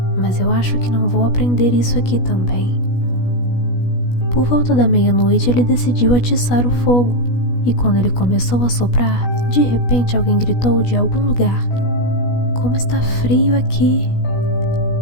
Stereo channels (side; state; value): right; late; 16 ms